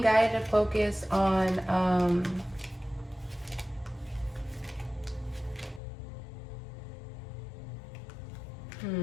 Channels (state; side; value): drops out; right; at 5.8 s